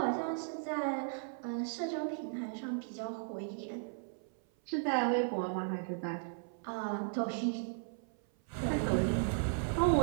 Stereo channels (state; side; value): silent; left; 54 dB below the other